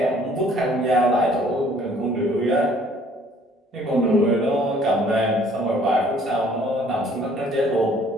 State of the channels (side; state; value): both; normal; correlation 0.58